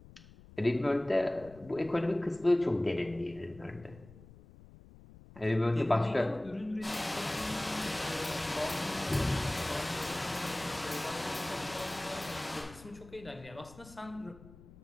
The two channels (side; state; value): left; noise; rumble, 20 dB below the sound